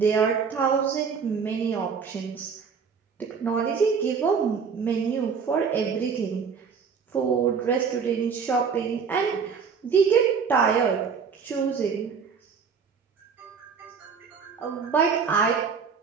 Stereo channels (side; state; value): left; quieter; 6.0 dB